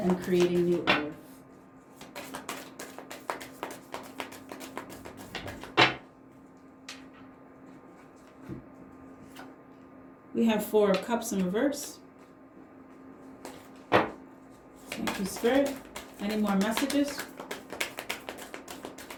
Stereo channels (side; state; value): both; identical; correlation 1.00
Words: and creating new earth? We have 4 of Cups in reverse. Thank you, Spirit. Any more messages?